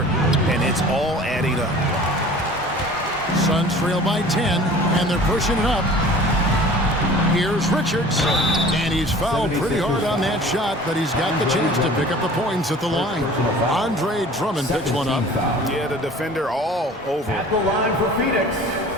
and it's all adding up. Suns trail by 10, and they're pushing it up. Here's Richards, and he's fouled pretty hard on that shot, but he's got the chance to pick up the points at the line. Andre Drummond picks one up. Yeah, the defender all over. At the line for Phoenix,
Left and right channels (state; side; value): normal; both; correlation 0.45